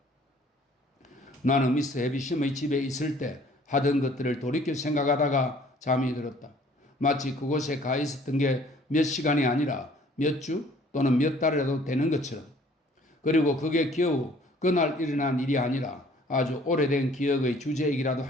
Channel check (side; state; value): both; normal; correlation 0.56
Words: 나는 미스 해비션의 집에 있을 때 하던 것들을 돌이켜 생각하다가 잠이 들었다. 마치 그곳에 가 있었던 게 몇 시간이 아니라 몇 주 또는 몇 달이라도 되는 것처럼, 그리고 그게 겨우 그날 일어난 일이 아니라 아주 오래된 기억의 주제이기라도